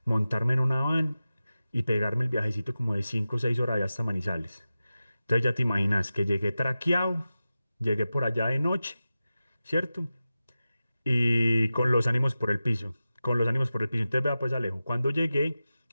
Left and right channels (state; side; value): inverted; both; correlation -0.94